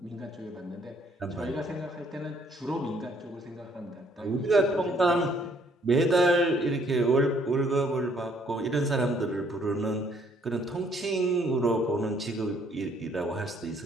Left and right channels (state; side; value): normal; both; correlation 0.64